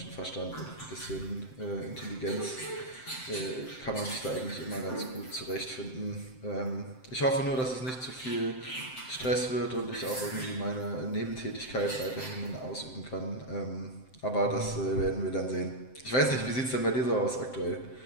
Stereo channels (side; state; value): right; late; 7.7 ms